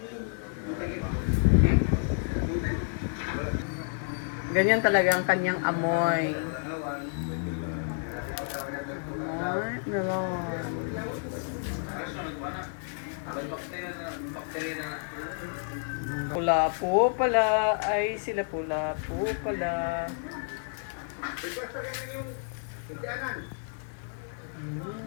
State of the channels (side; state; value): right; silent; 58 dB below the other